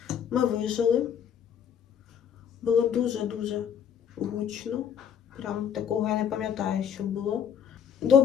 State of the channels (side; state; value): right; quieter; 8.4 dB